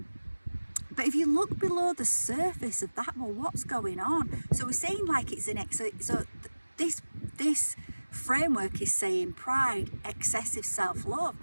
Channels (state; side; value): inverted; both; correlation -1.00